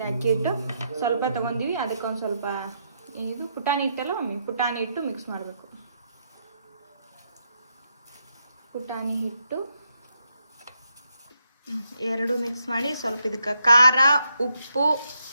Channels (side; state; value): both; inverted; correlation -0.79